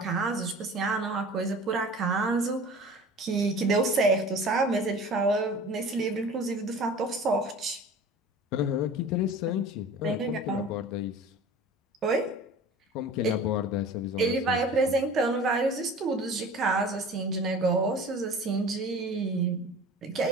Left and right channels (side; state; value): both; normal; correlation 0.41